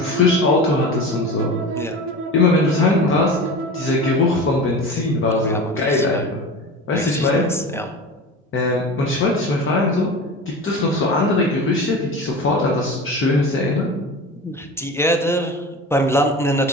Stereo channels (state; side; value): normal; both; correlation 0.32